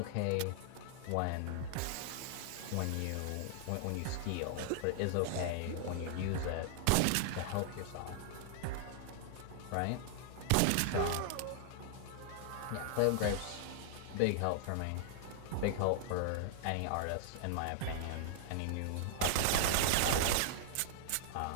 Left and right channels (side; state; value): both; different; correlation 0.00